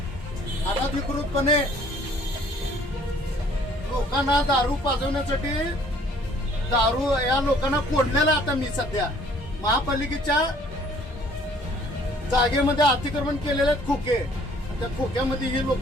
अनधिकृतपणे लोकांना दारू पाजवण्यासाठी दारू या लोकांना कोंडलेला. आता मी सध्या महापालिकेच्या जागेमध्ये अतिक्रमण केलेले आहेत खोके. त्या खोक्यामध्ये ही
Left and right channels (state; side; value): normal; both; correlation 0.58